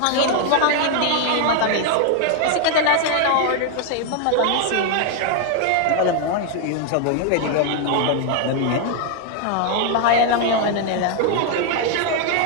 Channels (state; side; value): different; both; correlation 0.00